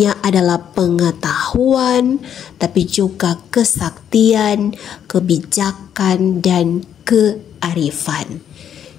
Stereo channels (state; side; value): quieter; right; 9.2 dB